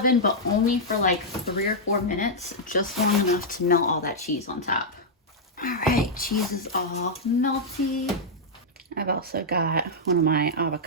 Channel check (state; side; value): normal; both; correlation -0.06